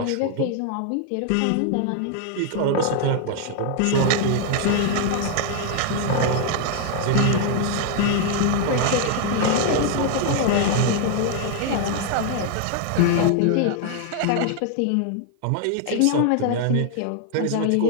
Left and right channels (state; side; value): different; both; correlation 0.00